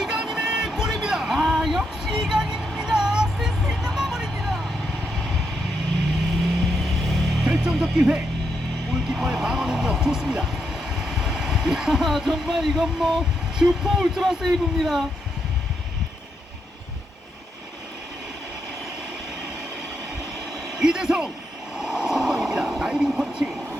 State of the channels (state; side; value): normal; both; correlation 0.81